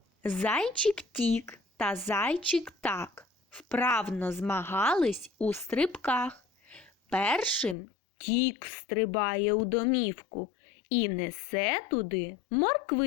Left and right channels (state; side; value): drops out; right; at 7.8 s